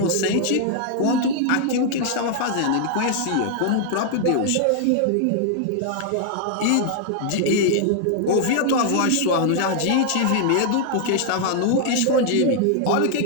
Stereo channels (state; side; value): different; both; correlation 0.00